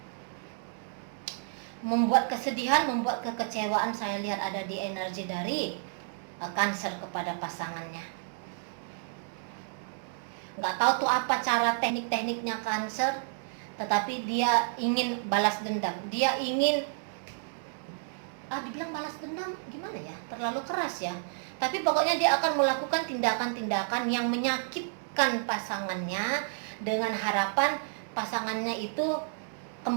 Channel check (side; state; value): left; silent; digital silence